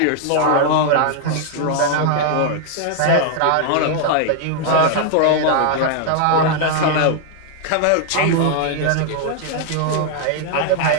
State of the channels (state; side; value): different; both; correlation 0.00